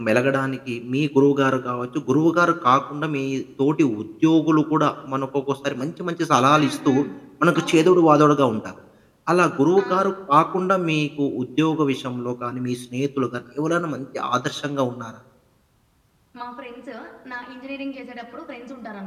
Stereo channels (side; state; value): both; identical; correlation 1.00